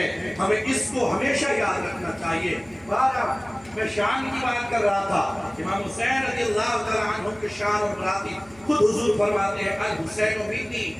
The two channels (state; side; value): noise; right; hum, 26 dB below the sound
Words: ہمیں اس کو ہمیشہ یاد رکھنا چاہیے۔ میں شان کی بات کر رہا تھا، امام حسین رضی اللہ تعالیٰ عنہ کے شان اور براتی خود حضور فرماتے ہیں الحسین منی